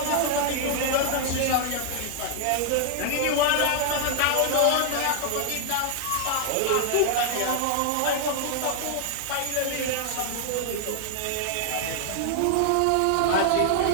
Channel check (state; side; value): different; both; correlation 0.00